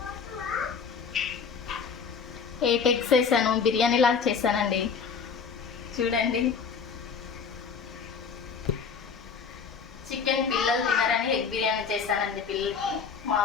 8 ఎగ్స్ వేసాను, బిర్యానీ లాగా చేశానండి. చూడండి, చికెన్ పిల్లలు తినరని ఎగ్ బిర్యానీ చేశానండి. పిల్లలకి మా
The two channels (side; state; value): right; quieter; 6.0 dB